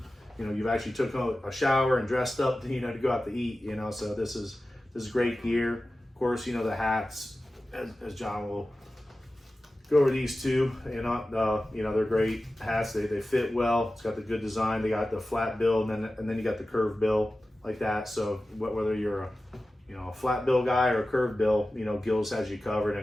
you know, you've actually took a shower and dressed up, you know, to go out to eat. You know, so this is great gear. Of course, you know, the hats, as John will go over these two. You know, they're great hats. They fit well. It's got the good design. They got the flat bill, and then you got the curved bill like that. So whether you're a flat bill guy or a curved bill, you know, Gillz has you covered. And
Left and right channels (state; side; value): normal; both; correlation 0.95